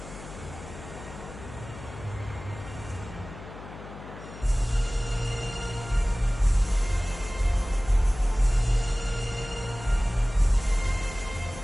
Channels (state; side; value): noise; left; hum, 14 dB below the sound